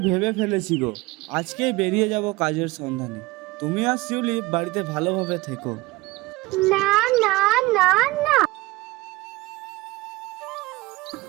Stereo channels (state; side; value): quieter; left; 21.0 dB